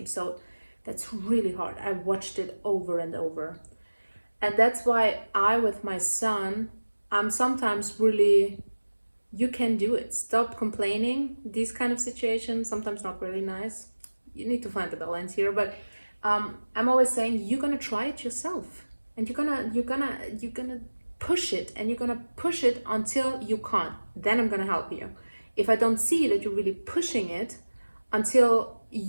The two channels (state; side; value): inverted; both; correlation -1.00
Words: So that's really hard. I watched it over and over. And that's why with my son, I'm sometimes really, you can do it. Stop complaining. These kind of situations, sometimes not really nice. You need to find the balance here. But I'm always saying, you're going to try it yourself. And you're gonna push it, and you're gonna push it until you can't. Then I'm gonna help you. If I don't see that you're really pushing it until